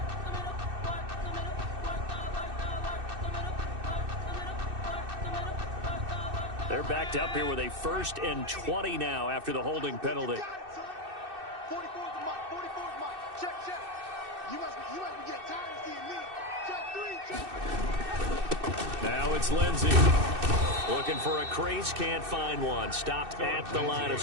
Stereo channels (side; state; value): left; late; 2.6 ms